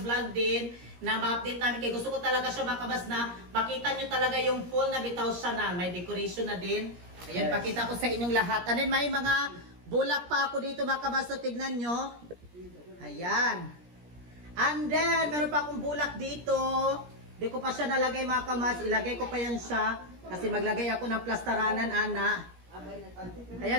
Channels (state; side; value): late; left; 17 ms